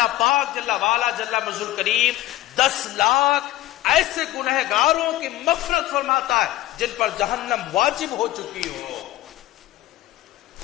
پاک جل وعلا جل مجدہ کریم 10 لاکھ ایسے گنہگاروں کی مغفرت فرماتا ہے جن پر جہنم واجب ہو چکی ہو.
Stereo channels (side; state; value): right; quieter; 15.7 dB